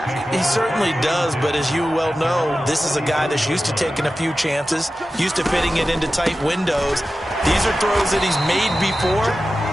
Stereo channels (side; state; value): both; normal; correlation 0.93